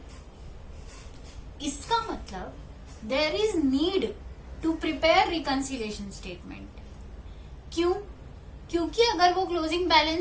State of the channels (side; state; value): both; identical; correlation 1.00